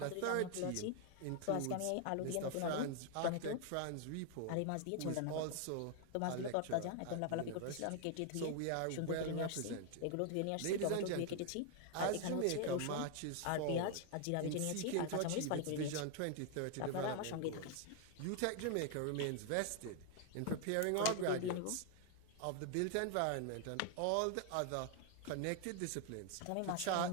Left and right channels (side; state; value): both; different; correlation 0.00